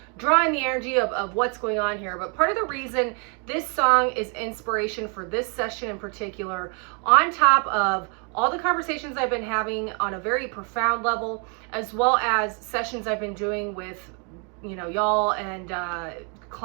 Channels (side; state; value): left; quieter; 36.9 dB